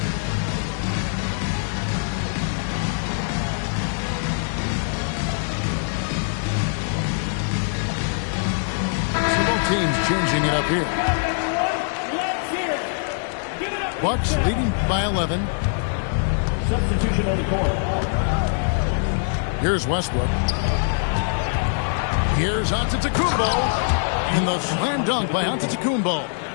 Teams changing it up here. Bucks leading by 11. Substitution on the court. Here's Westbrook. Here's Antetokounmpo. And the slam dunk by Antetokounmpo.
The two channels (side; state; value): right; silent; digital silence